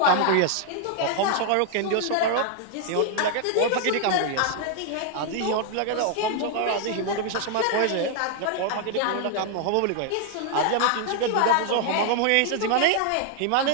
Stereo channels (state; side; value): different; both; correlation 0.00